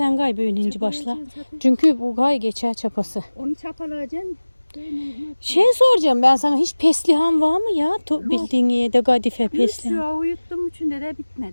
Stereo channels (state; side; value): inverted; both; correlation -1.00